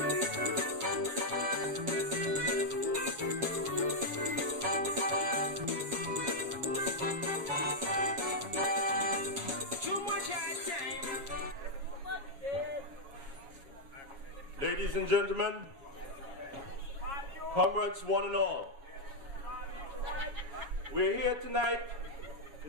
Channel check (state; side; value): late; left; 7.2 ms